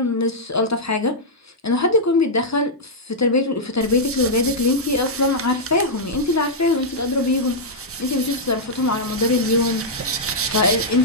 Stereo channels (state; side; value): normal; both; correlation -0.07